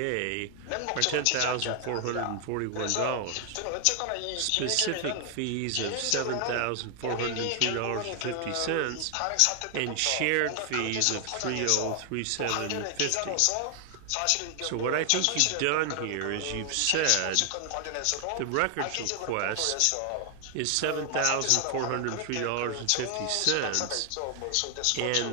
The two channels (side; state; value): both; different; correlation 0.00